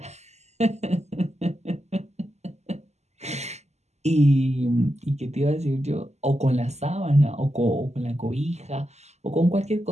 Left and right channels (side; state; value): left; late; 0.33 ms